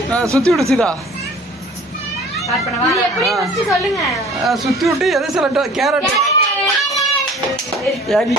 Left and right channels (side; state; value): both; normal; correlation 0.48